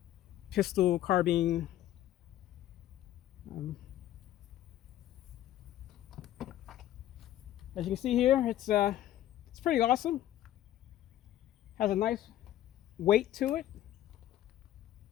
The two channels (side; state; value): right; quieter; 13.1 dB